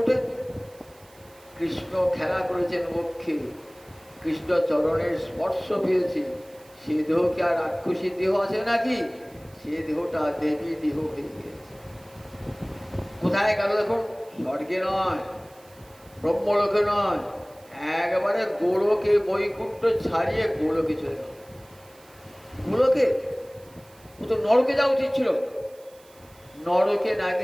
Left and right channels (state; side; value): noise; right; hiss, 27 dB below the sound